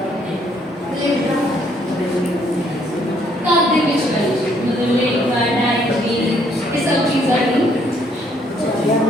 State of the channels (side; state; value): both; normal; correlation 0.67